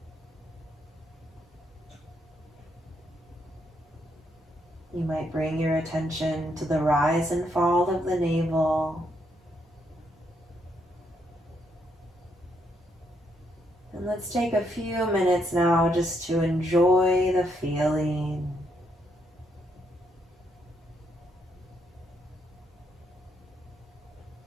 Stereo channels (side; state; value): both; normal; correlation 0.75